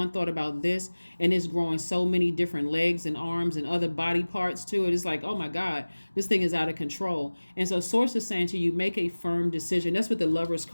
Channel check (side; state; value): both; inverted; correlation -1.00